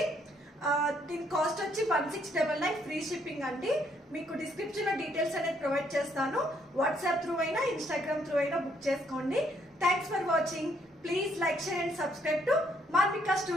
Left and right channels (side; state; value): both; normal; correlation 0.70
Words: దీని కాస్ట్ వచ్చి 1699 ఫ్రీ షిప్పింగ్ అండి. మీకు డిస్క్రిప్షన్ లో డీటెయిల్స్ అనేది ప్రొవైడ్ చేస్తాను. వాట్సాప్ త్రూ అయినా ఇన్స్టాగ్రామ్ త్రూ అయినా బుక్ చేసుకోండి. Thanks for watching. Please like, share and subscribe to Manvika